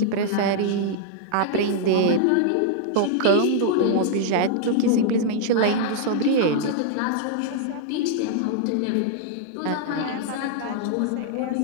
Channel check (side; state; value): both; different; correlation -0.01